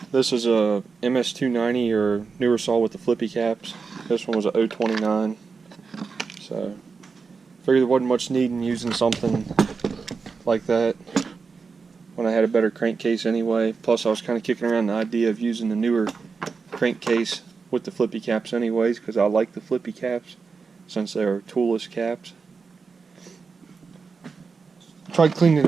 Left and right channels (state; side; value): quieter; left; 5.0 dB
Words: This is a MS290 or newer saw with the flippy caps. This one was a 029. So, figured there wasn't much need in using something like that when I had a better crankcase anyway. Plus, I was kind of kicking around the idea of using the newer crankcase with the flippy caps anyways, because I like the flippy caps since they're toolless caps. Tried cleaning it